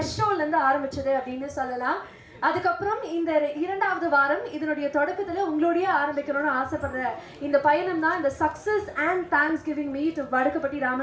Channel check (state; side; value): identical; both; correlation 1.00